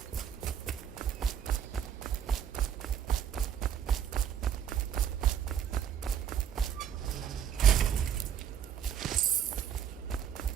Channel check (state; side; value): quieter; left; 9.0 dB